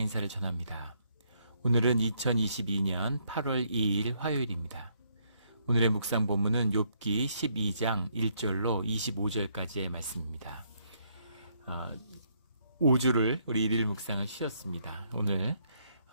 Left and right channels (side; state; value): both; inverted; correlation -0.72